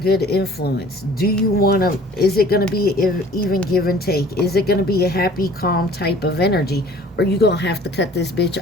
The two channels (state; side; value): normal; both; correlation 0.50